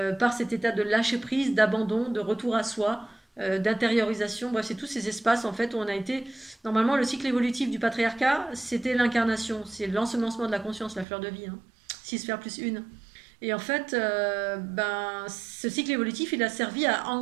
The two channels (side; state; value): left; drops out; at 11.1 s